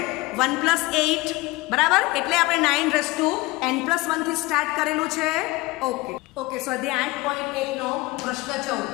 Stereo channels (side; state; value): right; quieter; 21.7 dB